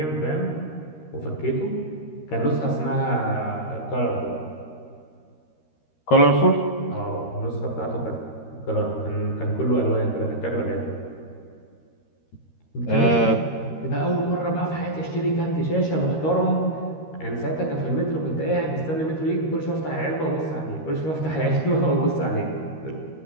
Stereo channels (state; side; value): late; right; 13 ms